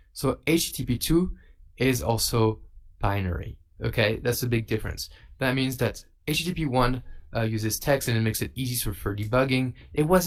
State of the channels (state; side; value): identical; both; correlation 1.00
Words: So HTTP2 is also binary. Okay, that's a big difference. That means that HTTP1 uses text and it makes it easy for debugging. It